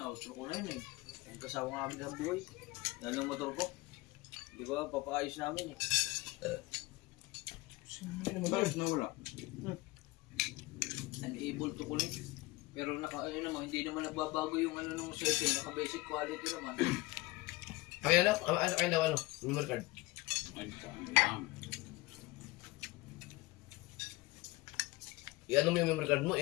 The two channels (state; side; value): quieter; right; 21.0 dB